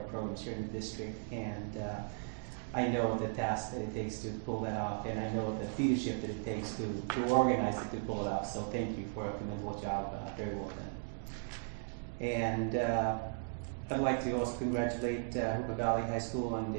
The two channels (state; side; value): silent; left; digital silence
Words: here in the district. And I know the task that it takes to pull that off, and I know the leadership that it takes to organize it to pull it off. So thank you for a commendable job, very well done. And I'd like to also congratulate Jurupa Valley High School on